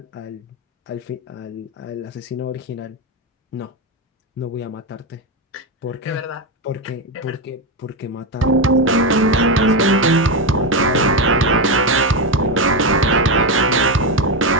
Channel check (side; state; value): both; normal; correlation 0.11